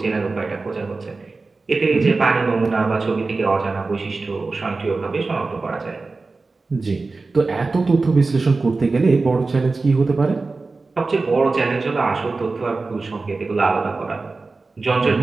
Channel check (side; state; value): left; quieter; 3.8 dB